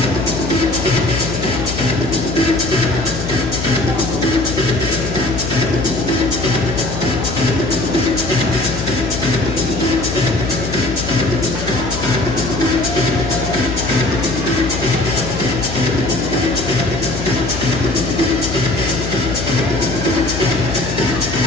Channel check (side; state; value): left; noise; hum, 6 dB below the sound